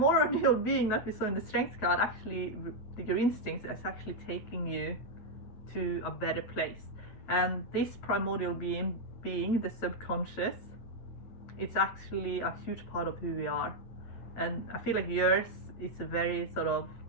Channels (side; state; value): right; late; 8.7 ms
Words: being that we saw in the Strength card, actually, your instincts is actually taking you to a better place. And this primordial being the subconscious, it's actually a huge part of who we are. And I feel like yours is a very sort of